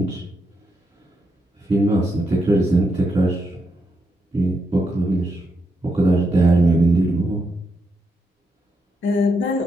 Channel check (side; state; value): both; normal; correlation 0.81